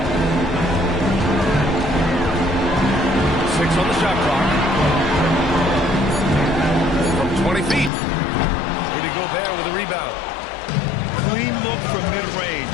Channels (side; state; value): right; drops out; at 7.9 s